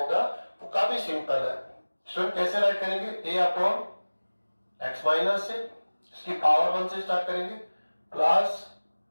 वो काफी सिंपल है। स्टूडेंट कैसे राइट करेंगे, ए अपॉन एक्स माइनस से, इसकी पावर 1 से स्टार्ट करेंगे, plus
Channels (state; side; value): inverted; both; correlation -1.00